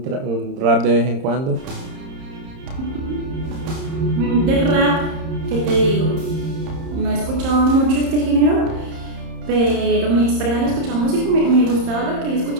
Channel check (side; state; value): left; late; 30 ms